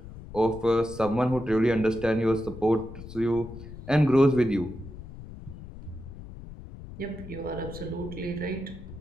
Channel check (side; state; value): left; noise; rumble, 13 dB below the sound